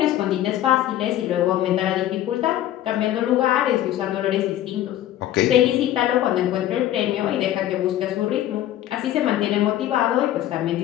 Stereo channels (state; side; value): quieter; right; 12.9 dB